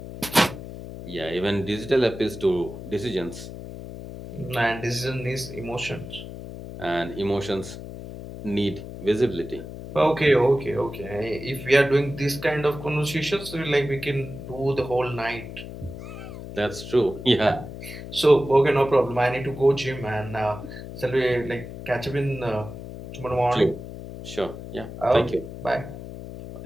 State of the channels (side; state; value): left; noise; hum, 11 dB below the sound